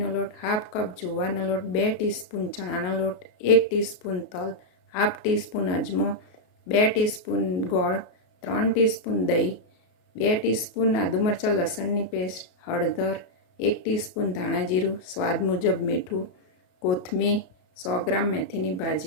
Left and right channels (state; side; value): late; right; 33 ms